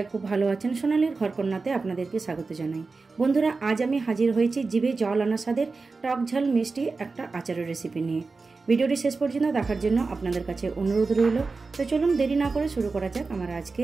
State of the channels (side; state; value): left; quieter; 4.1 dB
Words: खूब भालो आछेन। सोनालीर घरकन्याते आपनादेरके स्वागत जानाई। बंधुरा आज आमी हाजिर हयेछि जिभे जल आना स्वादेर टक झाल मिष्टि एकटा आचारेर रेसिपि निये। भिडियोटी शेष पर्यन्त देखार जन्य आपनादेर काछे अनुरोध रइल। तो चलुन देरी ना करे शुरू करा जाक आमार